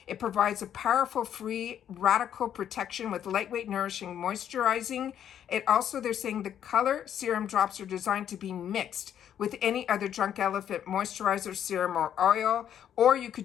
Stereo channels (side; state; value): right; quieter; 9.7 dB